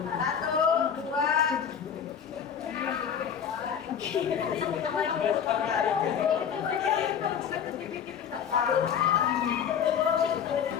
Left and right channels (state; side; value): quieter; right; 7.9 dB